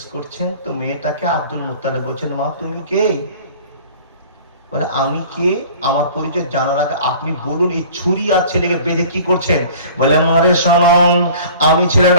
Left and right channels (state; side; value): inverted; both; correlation -0.46